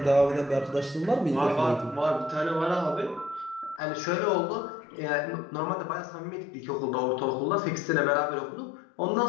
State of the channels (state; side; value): drops out; right; at 3.8 s